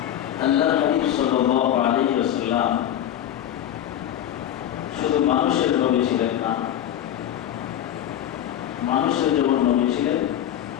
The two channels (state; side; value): quieter; right; 11.0 dB